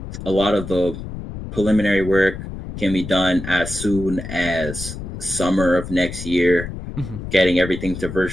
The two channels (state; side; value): noise; left; rumble, 9 dB below the sound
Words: A lot of the preliminary work can be done as soon as summer of next year, getting everything to